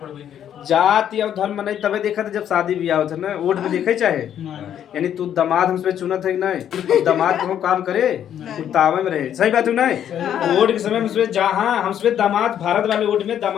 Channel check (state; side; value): quieter; right; 9.9 dB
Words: गई जाति और धर्म नहीं तबे देखा था जब शादी ब्याह होता ना, वोट में देखे चाहे यानी तू दामाद हमसे चुनत है कि नहीं, दामाद को काम करे तावे में रहे, सही बात है नहीं। वोट के समय में जहाँ हमसे दामाद भारत वाले वोट में